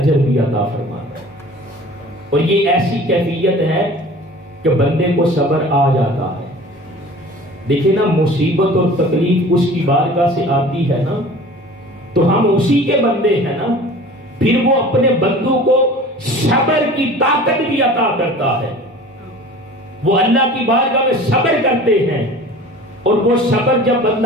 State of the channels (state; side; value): normal; both; correlation 0.42